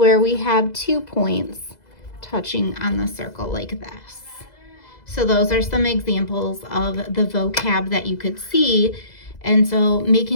we have 2 points touching on the circle like this. So those are some examples of the vocab that you could see. And so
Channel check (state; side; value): late; right; 2.0 ms